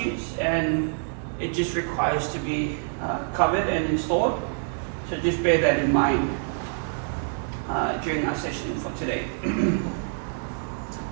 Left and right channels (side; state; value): left; silent; 61 dB below the other